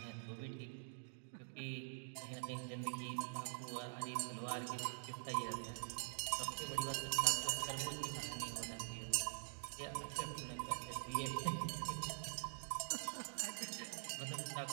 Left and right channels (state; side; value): silent; left; digital silence